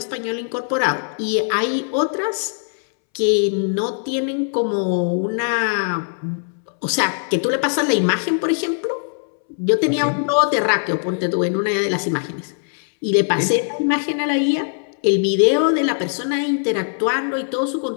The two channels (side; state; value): right; silent; 65 dB below the other